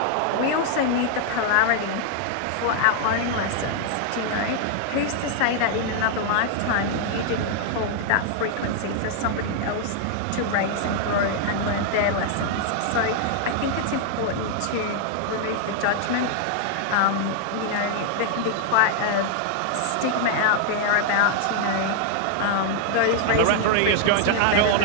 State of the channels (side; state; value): both; different; correlation 0.00